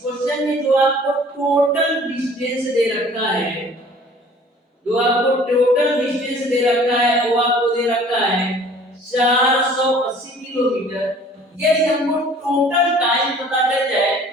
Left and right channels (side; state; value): both; normal; correlation 0.51